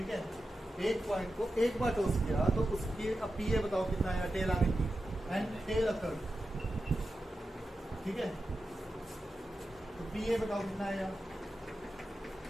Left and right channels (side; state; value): both; normal; correlation 0.91